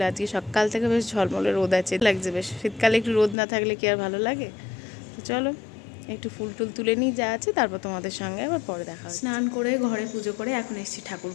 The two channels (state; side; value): drops out; right; at 3.4 s